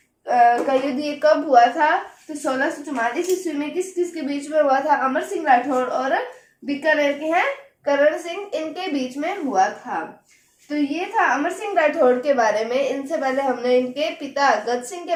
का युद्ध ये कब हुआ था, तो 1644 ईस्वी में। किस किस के बीच में हुआ था, अमर सिंह राठौड़ और बीकानेर के हैं करण सिंह, इनके बीच में हुआ था। तो ये था अमर सिंह राठौड़ के बारे में। इनसे पहले हमने इनके पिता गद सिंह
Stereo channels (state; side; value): identical; both; correlation 1.00